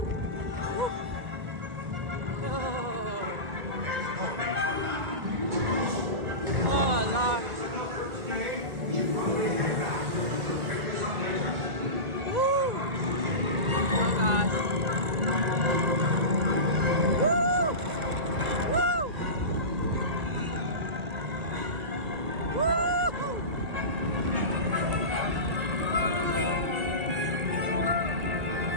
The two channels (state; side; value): late; left; 2.0 ms